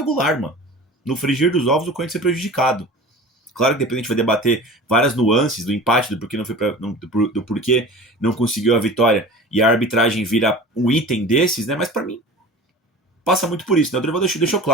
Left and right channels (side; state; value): both; normal; correlation 0.38